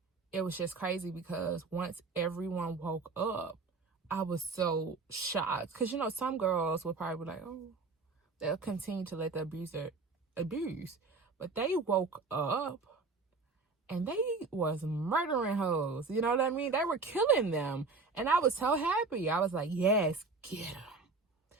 it was just crazy, because once everyone woke up, I was so shocked. Because, some girls would probably be like, oh, they'll continue to let the abuser abuse. But they woke up, and they was murdering hoes. You know what I mean? They were killing them. And I was so happy. I was like, yes, get them.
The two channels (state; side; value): quieter; left; 4.1 dB